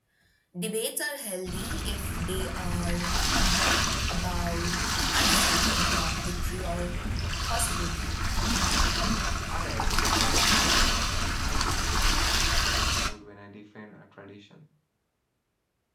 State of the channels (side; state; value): both; identical; correlation 1.00